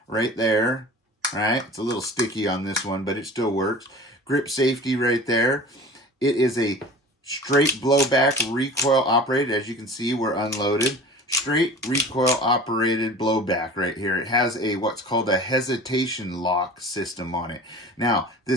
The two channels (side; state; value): both; normal; correlation 0.40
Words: right there, right? It's a little sticky on this one, but it still works. Grip safety right there. It is a straight blowback recoil operated. As you can see, we're unloaded. Straight recoil operated blowback right here. It has what's called a hesitation lock system on it. Now,